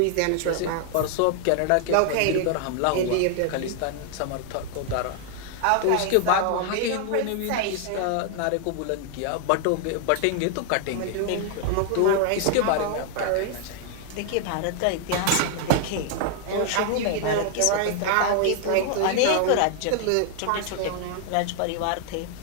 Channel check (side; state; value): both; different; correlation 0.00